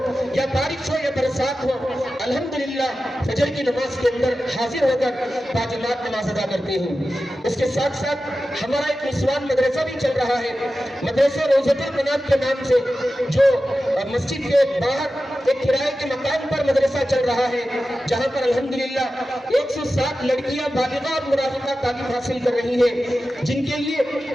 या बारिश हो या बरसात हो, अल्हम्दुलिल्लाह फजर की नमाज के अंदर हाजिर होकर बाजमात नमाज अदा करते हैं। इसके साथ साथ हमारा एक निस्वान मदरसा भी चल रहा है, मदरसा रोज़तुल मनात के नाम से, जो मस्जिद के बाहर एक किराए के मकान पर मदरसा चल रहा है, जहाँ पर अल्हम्दुलिल्लाह 107 लड़कियां बालिगा और मुराहिका तालीम हासिल कर रही है, जिनके लिए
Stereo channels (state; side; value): normal; both; correlation 0.93